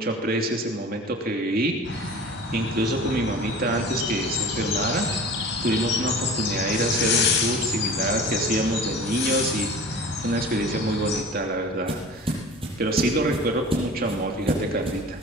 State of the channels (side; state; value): both; normal; correlation 0.40